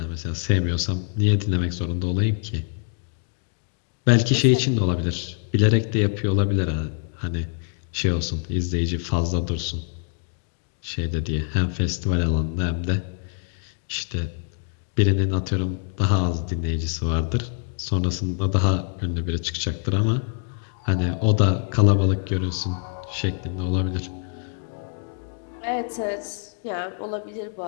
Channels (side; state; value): right; silent; 62 dB below the other